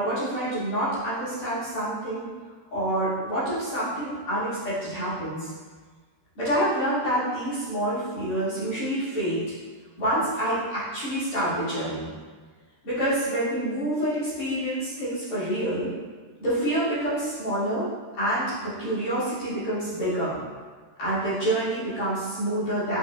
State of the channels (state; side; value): late; right; 13 ms